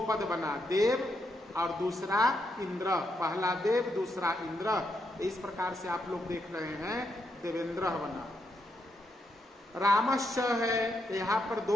पद बना, देव और दूसरा इंद्र, पहला देव दूसरा इंद्र। इस प्रकार से आप लोग देख रहे हैं देवेंद्र बना। रामश्च है, यहाँ पर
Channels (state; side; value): normal; both; correlation 0.80